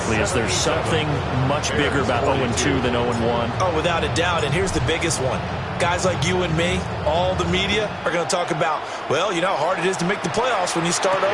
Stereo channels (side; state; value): both; identical; correlation 1.00